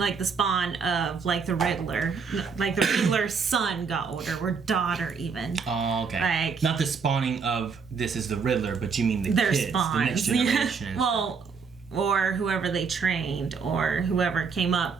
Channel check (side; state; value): left; quieter; 5.5 dB